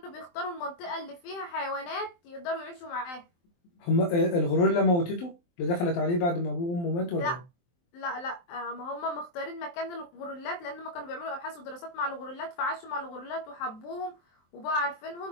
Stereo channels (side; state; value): right; late; 23 ms